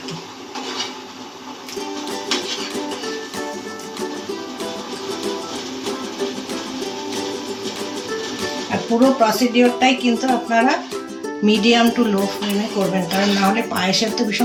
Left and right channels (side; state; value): both; identical; correlation 1.00